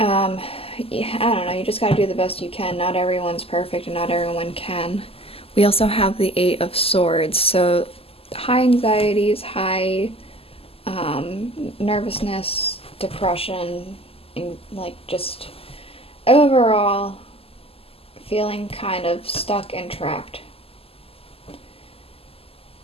I don't know, you just gotta do the best you can. Not everyone's perfect and not everyone can. We also have the Eight of Swords, so high anxieties, high nervousness, depression, and like just overall feeling kind of stuck and trapped.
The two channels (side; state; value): right; late; 0.28 ms